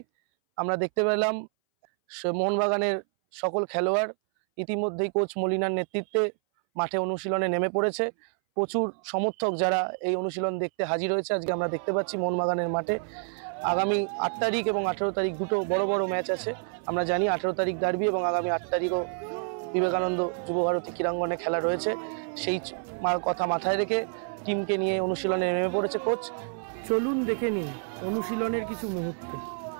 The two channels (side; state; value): left; silent; 59 dB below the other